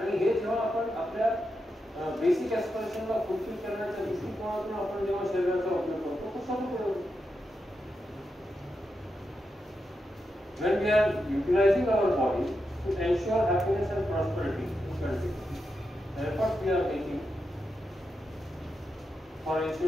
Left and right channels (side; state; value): both; normal; correlation 0.87